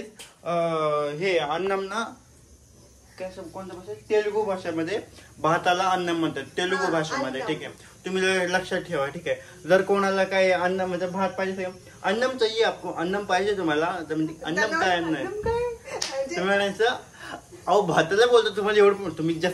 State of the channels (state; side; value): identical; both; correlation 1.00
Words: हे अन्नम ना काय कोणत्या भाषेत, तेलुगू भाषेमध्ये भाताला अन्नम म्हणतात, तेलुगू भाषेमध्ये. ठीक आहे, तुम्ही लक्षात ठेवा. ठीक आहे. जर कोणाला काय अन्न म्हणजे भात पाहिजे, अन्नम चाहिए आपको, अन्नम पाहिजे तुम्हाला, अन्नम काय अन्न आहे तुम्ही म्हणायचं. अहो भाताला बोलतो तुम्हाला एवढं, तुम्ही